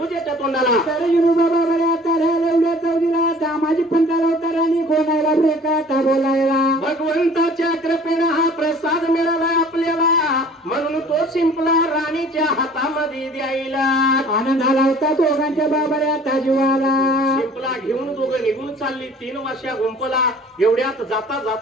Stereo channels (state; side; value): normal; both; correlation 0.50